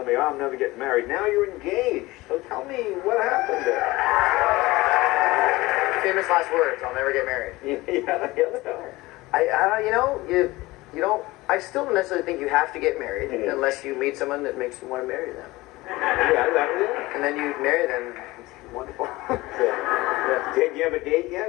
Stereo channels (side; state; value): right; quieter; 20.1 dB